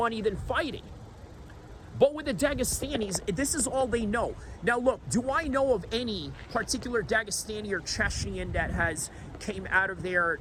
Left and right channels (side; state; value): both; identical; correlation 1.00